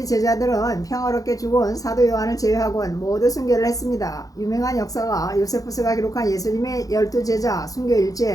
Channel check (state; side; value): late; right; 0.17 ms